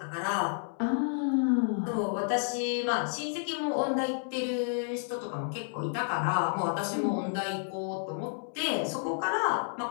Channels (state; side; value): silent; right; 57 dB below the other